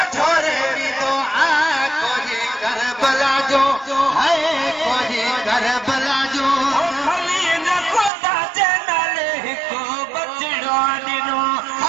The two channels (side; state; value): left; drops out; at 8.1 s